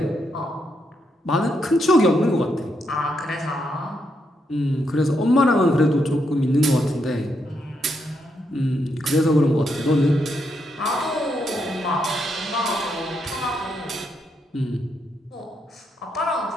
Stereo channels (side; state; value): both; normal; correlation 0.79